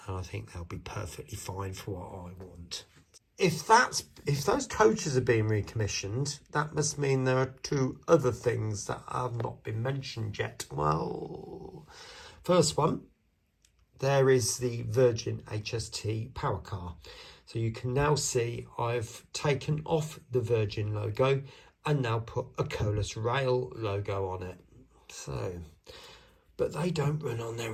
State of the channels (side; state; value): both; identical; correlation 1.00